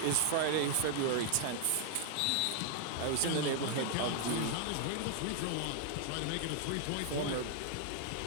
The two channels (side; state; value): both; different; correlation 0.00